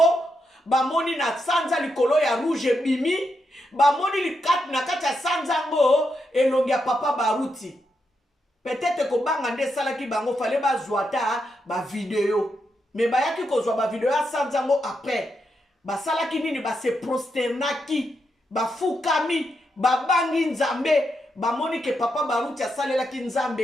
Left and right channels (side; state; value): both; normal; correlation 0.83